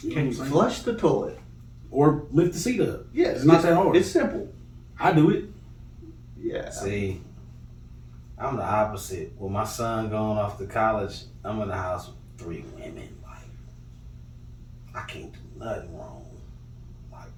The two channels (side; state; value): both; identical; correlation 1.00